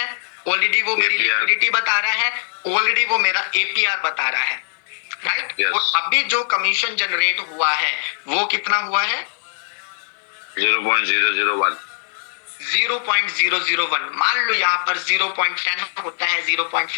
ऑलरेडी वो मेरी लिक्विडिटी बता रहा है, ऑलरेडी वो मेरा एपीआर बता रहा है। राइट, और अभी जो कमीशन जनरेट हुआ है वो कितना हुआ है? 0.001। 0.001। मान लो यहाँ पर 0.10 होता है,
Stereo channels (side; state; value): right; silent; digital silence